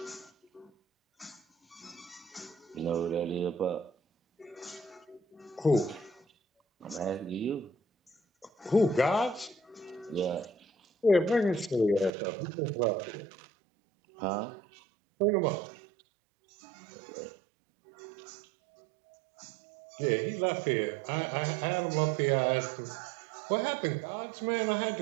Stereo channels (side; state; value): left; drops out; at 12.1 s